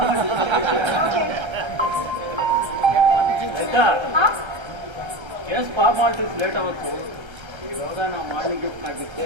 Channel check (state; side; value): late; left; 1.3 ms